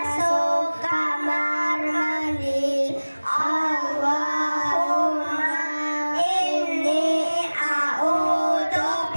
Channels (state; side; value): inverted; both; correlation -1.00